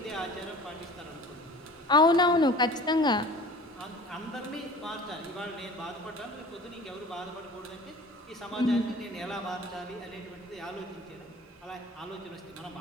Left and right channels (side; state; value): both; normal; correlation 0.43